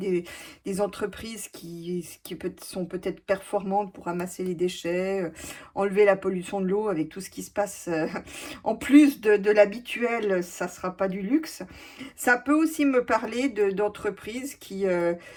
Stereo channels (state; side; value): identical; both; correlation 1.00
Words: entreprises sont peut-être performantes pour ramasser les déchets, enlever la pollution de l'eau avec tout ce qui se passe. En plus de l'habituel, ça ne sera pas du luxe. Ça peut aussi me parler d'entreprises qui,